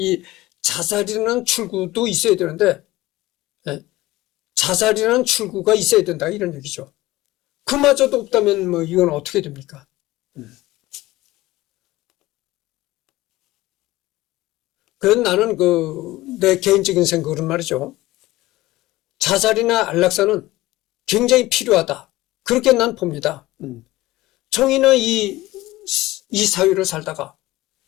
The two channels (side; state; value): right; quieter; 18.0 dB